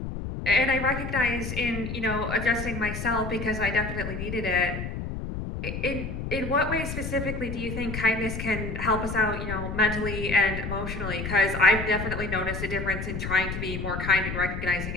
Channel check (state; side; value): noise; left; rumble, 5 dB below the sound